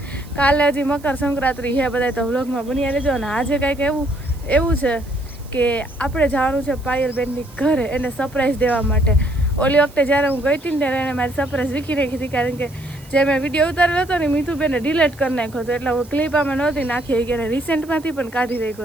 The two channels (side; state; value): right; noise; hiss, 24 dB below the sound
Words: કાલે હજી મકર સંક્રાંતિ છે. બધા તો વ્લોગમાં બન્યા રહેજો. અને આજે કાંઈક એવું છે કે આપણે જવાનું છે પાયલબેનની ઘરે એને સરપ્રાઈઝ દેવા માટે. ઓલી વખતે જ્યારે હું ગઈ હતી ને ત્યારે એને મારી સરપ્રાઈઝ વીખી નાખી હતી, કારણ કે જે મેં વિડીયો ઉતારેલો હતો ને મીઠુબેને ડિલીટ કરી નાખ્યો હતો. એટલે હું ક્લિપ આમાં નહોતી નાખી કે રિસેન્ટમાંથી પણ કાઢી